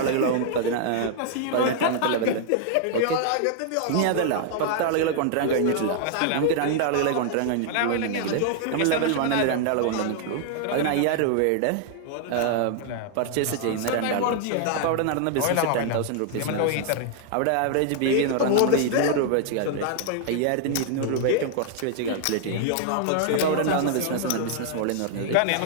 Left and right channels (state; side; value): different; both; correlation 0.00